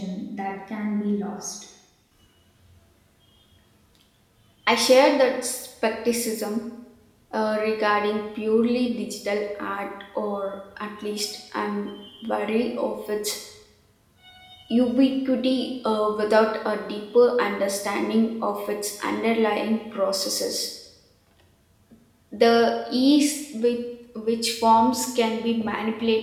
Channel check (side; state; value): both; identical; correlation 1.00